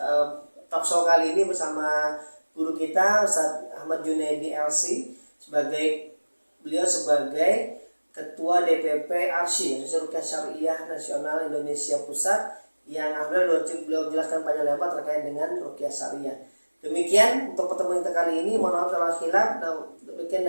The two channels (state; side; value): inverted; both; correlation -1.00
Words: talkshow kali ini bersama guru kita Ustaz Ahmad Junaidi LC beliau sebagai Ketua DPP ARSY Ruqyah Syariah Nasional Indonesia Pusat, yang alhamdulillah beliau jelaskan panjang lebar terkait dengan Ruqyah Syariah. Demikian untuk pertemuan kita kali ini, mohon maaf kalau khilaf, dan demikian